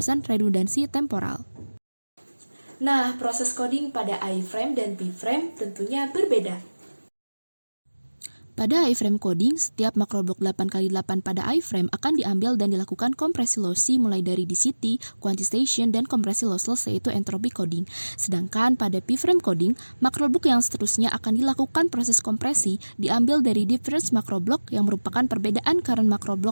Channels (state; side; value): inverted; both; correlation -1.00